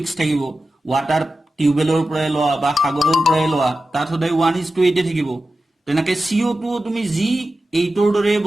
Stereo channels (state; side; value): normal; both; correlation 0.93